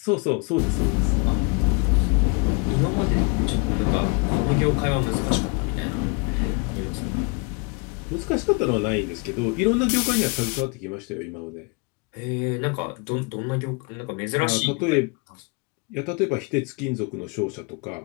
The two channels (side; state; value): right; quieter; 31.3 dB